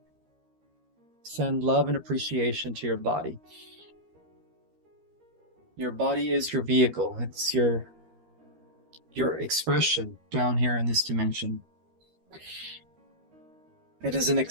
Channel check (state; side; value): late; left; 13 ms